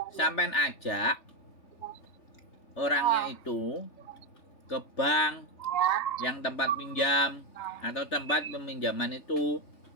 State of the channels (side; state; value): right; late; 3.4 ms